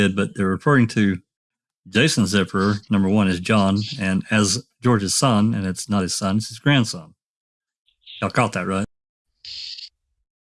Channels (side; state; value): both; identical; correlation 1.00